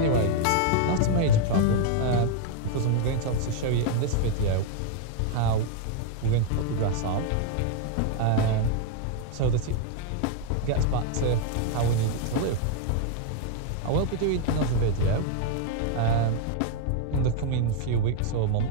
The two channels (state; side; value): different; both; correlation 0.00